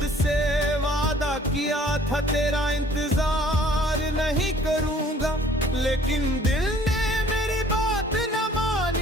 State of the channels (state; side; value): normal; both; correlation 0.55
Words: से वादा किया था तेरा इंतजार नहीं करूंगा, लेकिन दिल ने मेरी बात न